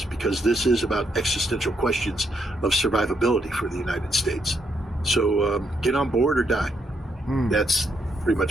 because this is about existential questions of survivability for the United States. So get on board or die. That's pretty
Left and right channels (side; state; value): both; normal; correlation 0.76